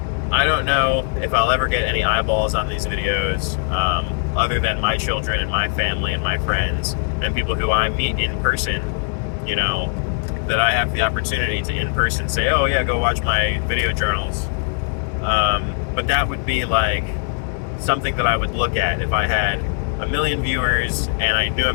I don't know if I'll ever get any eyeballs on these videos, other than my children and my family and my friends and people who I meet in person, that I have the opportunity to in person say, oh yeah, go watch my video journals. But that would be like something that I would look at if I had 1 million viewers and I knew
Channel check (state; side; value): silent; right; 59 dB below the other